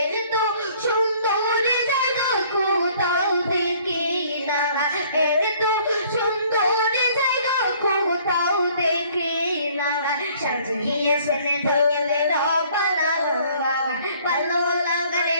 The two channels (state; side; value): inverted; both; correlation -0.58